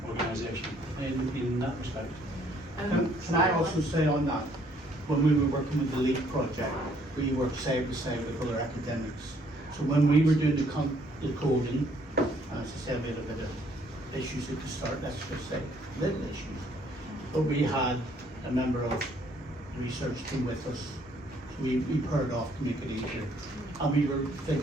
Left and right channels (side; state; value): both; normal; correlation 0.64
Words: organisation in that respect. Can I also say on that, when we were working with the LEAP project, we worked side by side with other academics. So when we were doing the coding, as I said, we had a bit of issues at the start, let's just say, little issues. But we had a member of the research team with us. So we paired off to make it easier. And we were